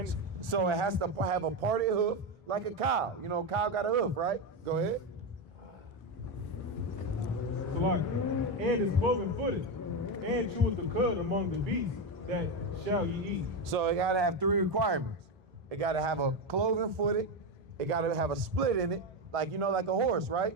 So it has to have a parted hoof like a cow. You know, cow got a hoof, right? Go ahead. and is cloven footed, and cheweth the cud among the beasts that shall ye eat. So it gotta have three requirements. It gotta have a cloven footed, it gotta have a split in it, like you know, like a horse,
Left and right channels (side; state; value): both; normal; correlation 0.12